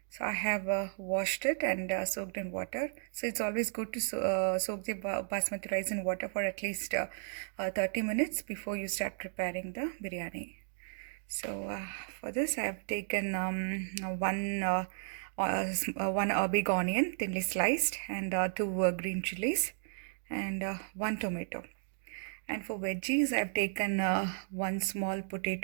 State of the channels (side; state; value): left; silent; digital silence